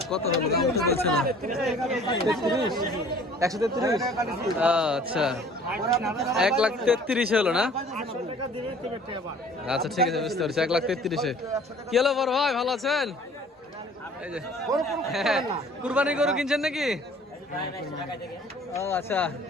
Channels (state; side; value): normal; both; correlation 0.51